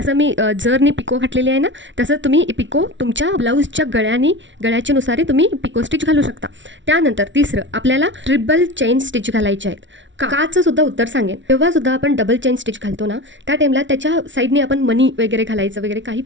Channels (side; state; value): left; late; 0.55 ms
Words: मी जरनी पिको घातलेली आहे ना तसं तुम्ही पिको तुमच्या ब्लाऊजच्या गळ्याच्या नुसार तुम्ही पिको स्टिच घालू शकता। त्यानंतर तिसरं आपल्याला ट्रिपल चेन स्टिच घालायचे आहेत। काचं सुद्धा उत्तर सांगेन। तेव्हा सुद्धा आपण डबल चेन स्टिच घालतो ना त्या टाईमला त्याच्या साईडने आपण मनी वगैरे घालायचं वगैरे काही